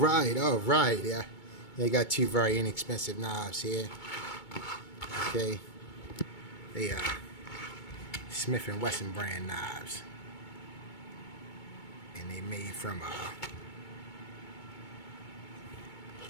right. Yeah, they got two very inexpensive knives here. Okay, they are Smith and Wesson brand knives, and they made from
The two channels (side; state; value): right; late; 2.2 ms